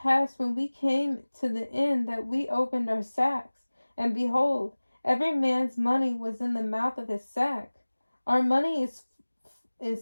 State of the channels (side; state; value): both; inverted; correlation -1.00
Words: when we came to the inn that we opened our sacks, and behold, every man's money was in the mouth of his sack. Our money